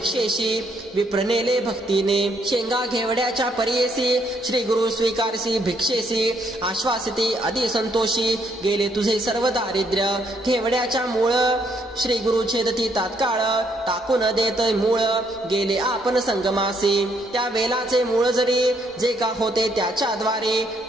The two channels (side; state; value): both; normal; correlation 0.71